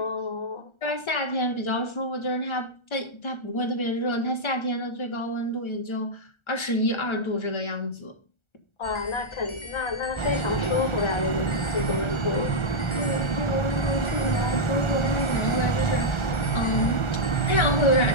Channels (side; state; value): right; late; 1.3 ms